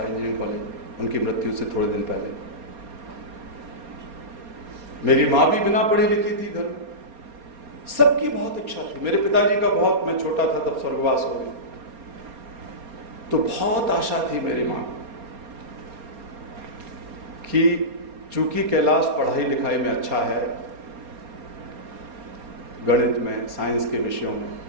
इंजीनियरिंग कॉलेज, उनकी मृत्यु से थोड़े दिन पहले। मेरी माँ भी बिना पढ़ी लिखी थी घर में। सबकी बहुत इच्छा थी। मेरे पिताजी का बहुत, मैं छोटा था तब स्वर्गवास हो गया, तो बहुत आशा थी मेरी माँ कि चूंकि कैलाश पढ़ाई लिखाई में अच्छा है, गणित में, साइंस के विषयों में,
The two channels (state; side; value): late; left; 4.3 ms